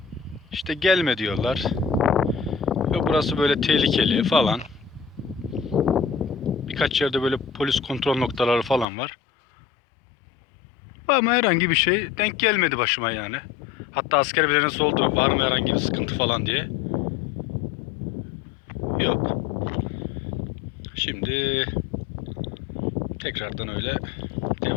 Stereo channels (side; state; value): right; drops out; at 8.8 s